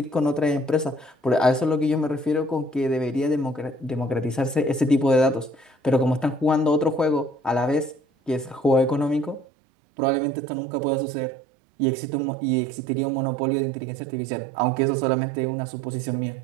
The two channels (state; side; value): drops out; left; at 9.5 s